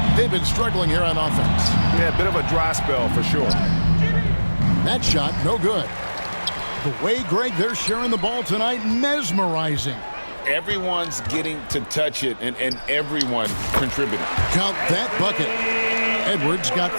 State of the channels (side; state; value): both; inverted; correlation -1.00